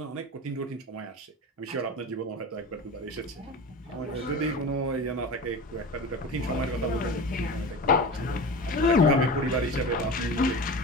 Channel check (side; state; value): both; normal; correlation 0.31